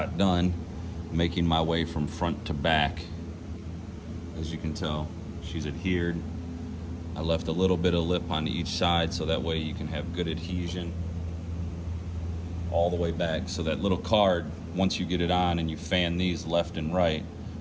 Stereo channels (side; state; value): both; identical; correlation 1.00